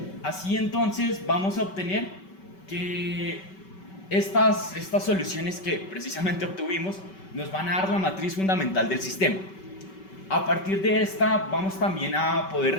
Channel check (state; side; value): late; right; 5.2 ms